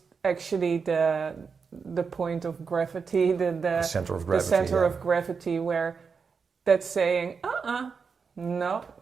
actually the point of gravity, the center of gravity, of gravity, where that's saying, no,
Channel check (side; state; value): left; quieter; 5.5 dB